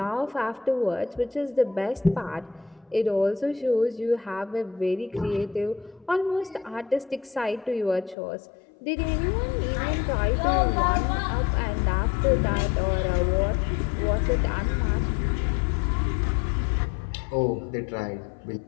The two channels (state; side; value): drops out; right; at 8.2 s